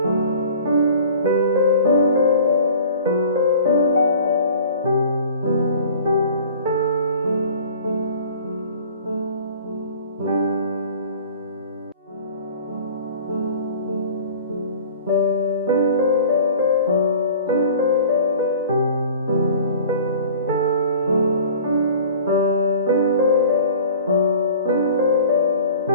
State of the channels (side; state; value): both; inverted; correlation -0.46